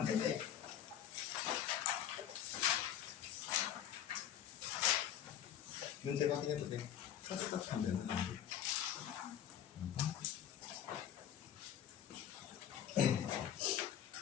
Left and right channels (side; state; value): right; quieter; 10.1 dB